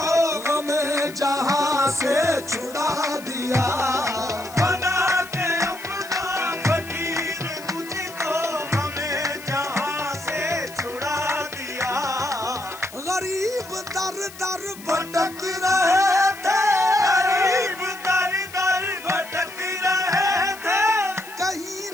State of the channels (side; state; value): left; noise; hiss, 17 dB below the sound